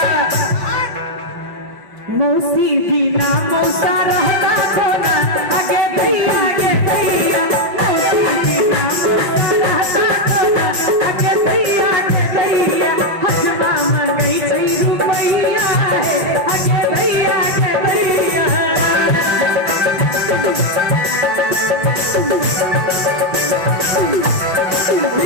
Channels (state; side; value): late; left; 5.6 ms